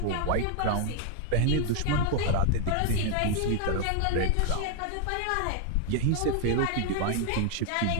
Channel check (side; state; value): both; different; correlation 0.00